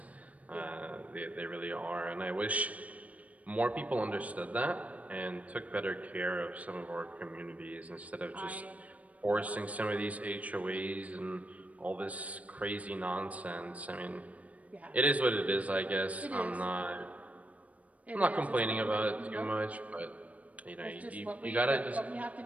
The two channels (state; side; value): late; left; 0.068 ms